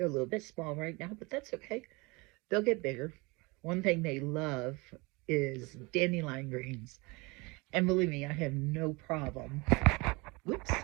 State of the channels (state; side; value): quieter; left; 25.8 dB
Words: a little bit small right now, but that's okay. They'll get bigger. One thing they love is dandelion greens. And believe me, I have no problem.